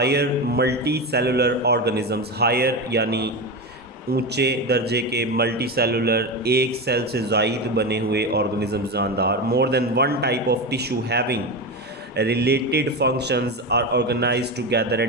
multi cellular organisms, higher यानी ऊंचे दर्जे के, मल्टी सेलुलर एक सेल से ज़ायद बने हुए ऑर्गेनिज्म जानदार, more than one type of tissue having related functions are organise together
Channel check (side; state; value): both; normal; correlation 0.19